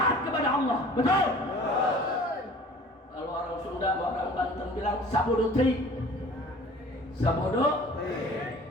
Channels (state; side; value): normal; both; correlation 0.47